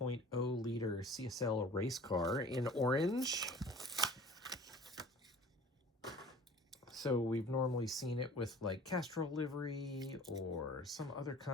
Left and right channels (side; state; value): both; normal; correlation 0.46